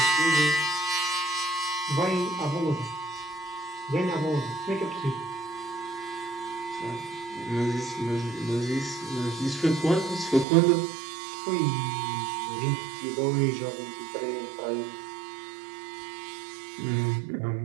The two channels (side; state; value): left; drops out; at 10.5 s